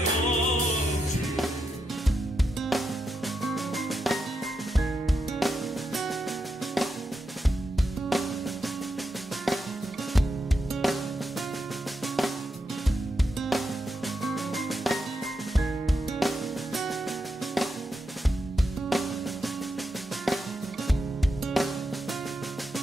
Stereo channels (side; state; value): both; normal; correlation 0.85